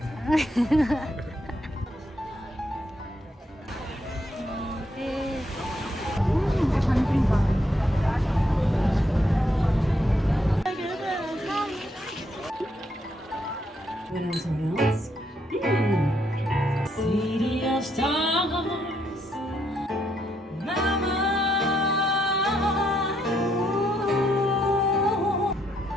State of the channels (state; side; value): normal; both; correlation 0.76